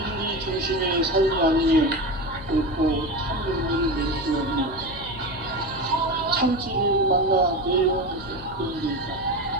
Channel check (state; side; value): noise; left; hum, 16 dB below the sound